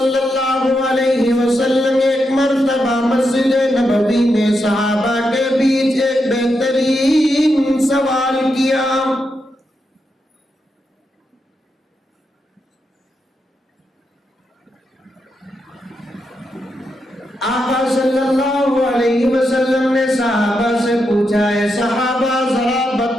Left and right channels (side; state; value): both; normal; correlation 0.84